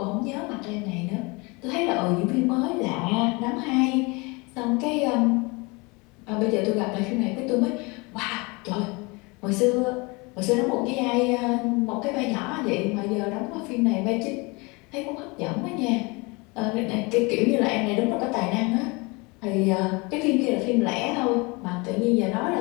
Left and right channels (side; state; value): right; quieter; 27.2 dB